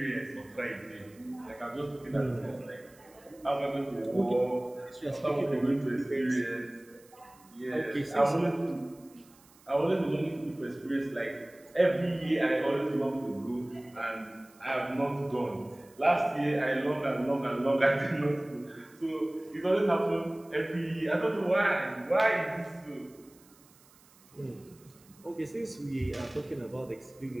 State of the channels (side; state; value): right; noise; hiss, 27 dB below the sound